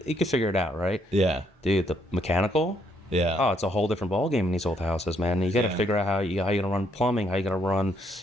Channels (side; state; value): both; normal; correlation 0.70